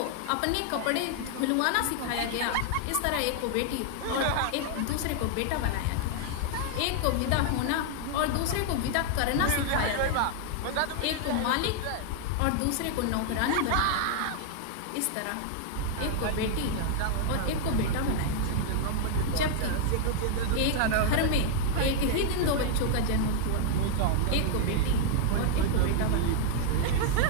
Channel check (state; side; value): different; both; correlation 0.00